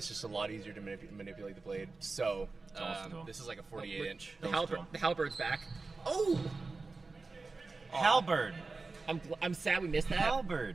just a lot easier to manipulate the blade. So this is like a 48-inch. The halberd's back. Oh! Halberd. I'm sad we missed that.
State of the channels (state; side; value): quieter; left; 3.8 dB